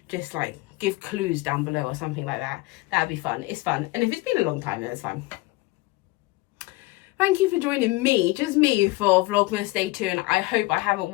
just like give clues down below or something like that. That'd be fun. It's fun. And if it's been a long time, then it's fine. Thank you for joining me, just me, for Vlogmas Day 2, and I hope I haven't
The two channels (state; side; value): quieter; right; 21.2 dB